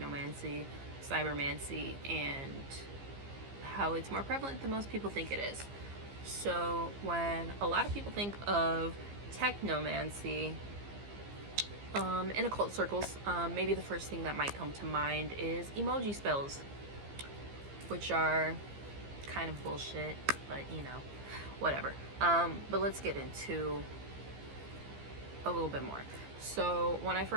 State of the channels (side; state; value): left; late; 15 ms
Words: cybermancy, and how it's more prevalent than most people think it is. So when a lot of people think of technomancy, in occult circles, maybe the first thing that might come to mind is emoji spells, which are kind of bullshit, but you know, whatever. But let's get into a little bit more. So when I